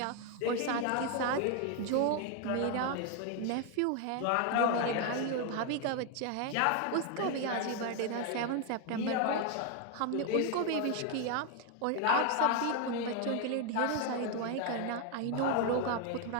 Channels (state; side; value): different; both; correlation 0.01